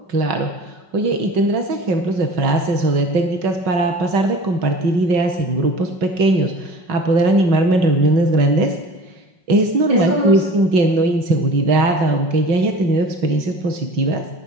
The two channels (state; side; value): late; left; 5.4 ms